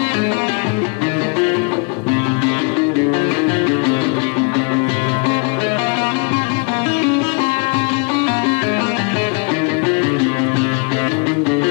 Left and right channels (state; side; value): quieter; right; 34.9 dB